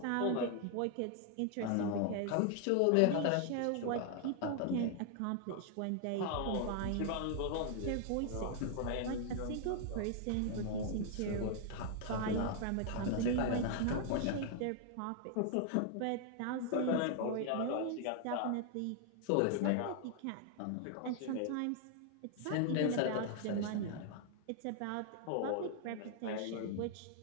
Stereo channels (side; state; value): both; different; correlation 0.00